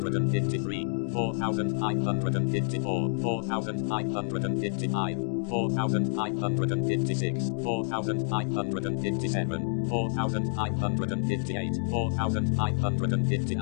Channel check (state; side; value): silent; right; digital silence